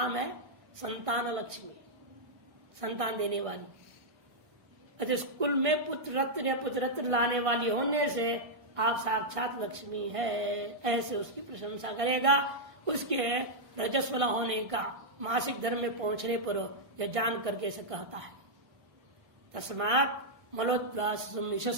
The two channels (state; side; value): late; left; 1.5 ms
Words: है संतान लक्ष्मी, संतान देने वाली। अच्छा, कुल में पुत्र रत्न या पुत्र रत्न लाने वाली होने से आप साक्षात लक्ष्मी है, ऐसे उसकी प्रशंसा करेगा। उसके रजस्वला होने का मासिक धर्म में पहुंचने पर यह जान करके ऐसे कहता है। तस्मात् मलोद्वासं